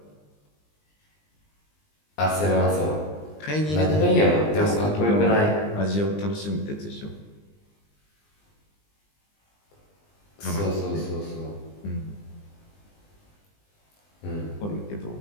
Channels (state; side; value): late; right; 20 ms